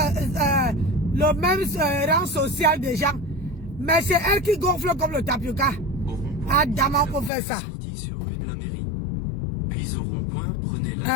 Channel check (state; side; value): drops out; right; at 7.3 s